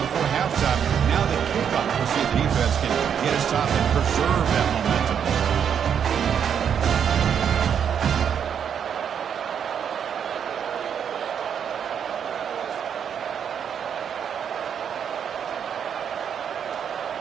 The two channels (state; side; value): quieter; left; 8.0 dB